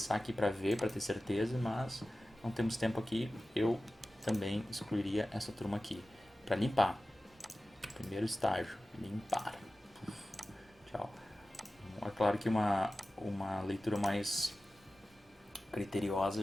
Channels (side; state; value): both; normal; correlation 0.96